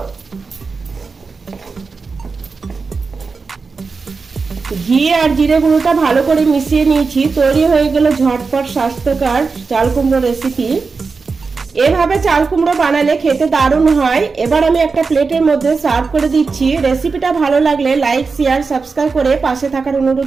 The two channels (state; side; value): quieter; left; 4.6 dB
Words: ঘি আর জিরে গুঁড়োটা ভালো করে মিশিয়ে নিয়েছি। তৈরি হয়ে গেল ঝটপট স্বাস্থ্যকর চাল কুমড়ো রেসিপি। এভাবে চাল কুমড়ো বানালে খেতে দারুণ হয়। এবার আমি একটা প্লেটের মধ্যে সার্ভ করে দিচ্ছি। রেসিপিটা ভালো লাগলে লাইক, শেয়ার, সাবস্ক্রাইব করে পাশে থাকার